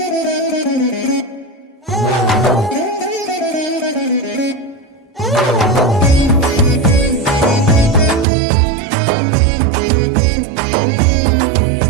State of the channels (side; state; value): left; drops out; at 8.2 s